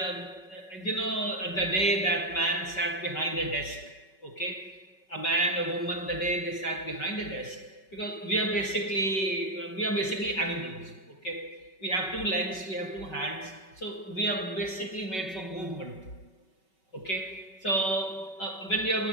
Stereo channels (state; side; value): late; right; 5.3 ms